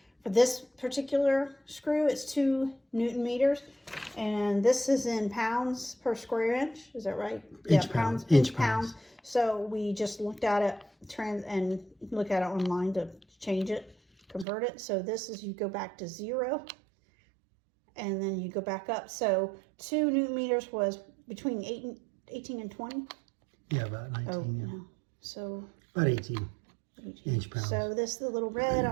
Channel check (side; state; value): left; drops out; at 14.5 s